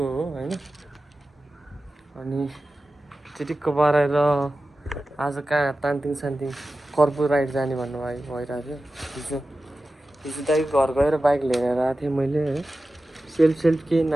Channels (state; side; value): normal; both; correlation 0.94